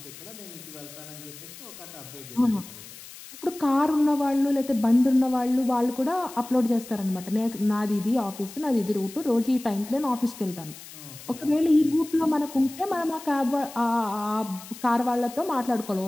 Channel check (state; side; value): noise; left; hiss, 16 dB below the sound